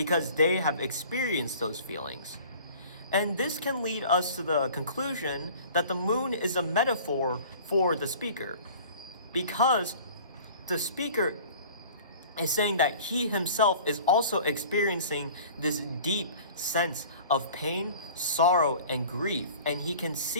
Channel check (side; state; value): both; inverted; correlation -0.45